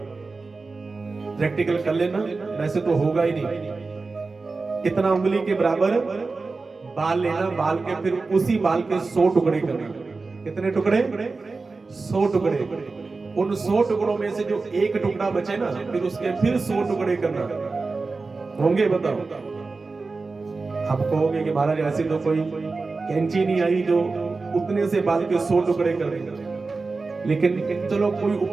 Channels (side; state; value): left; quieter; 3.9 dB